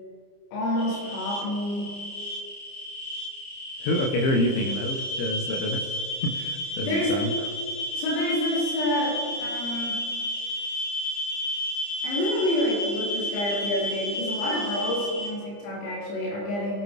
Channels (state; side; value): late; right; 30 ms